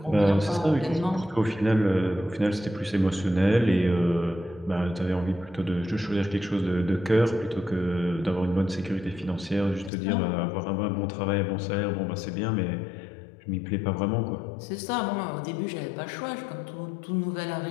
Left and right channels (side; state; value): right; drops out; at 9.9 s